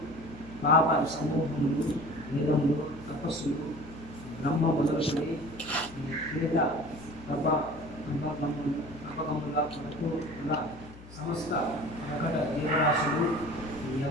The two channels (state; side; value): noise; left; hum, 18 dB below the sound